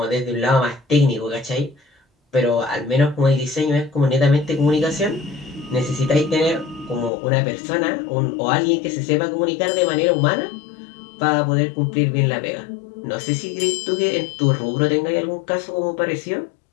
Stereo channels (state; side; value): drops out; right; at 7.1 s